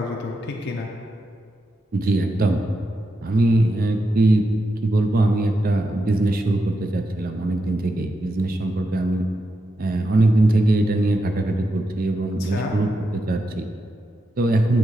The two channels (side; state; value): both; normal; correlation 0.86